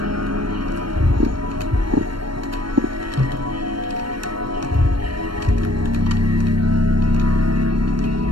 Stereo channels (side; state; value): left; late; 0.72 ms